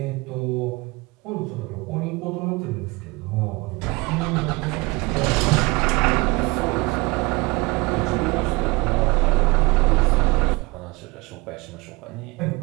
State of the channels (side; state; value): left; quieter; 25.0 dB